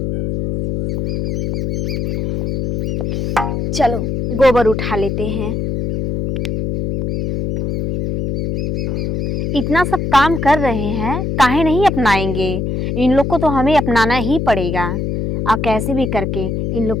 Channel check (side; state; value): left; noise; hum, 2 dB below the sound